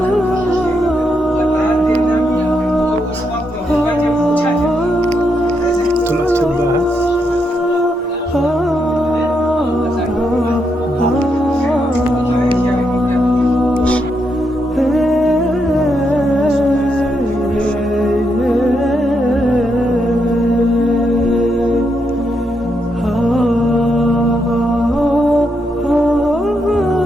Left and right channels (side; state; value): both; normal; correlation 0.80